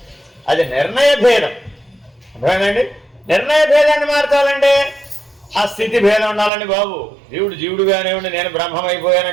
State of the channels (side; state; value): left; drops out; at 6.5 s